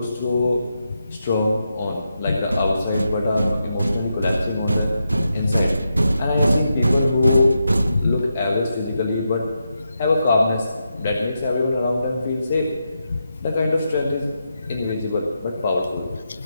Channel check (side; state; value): both; inverted; correlation -0.86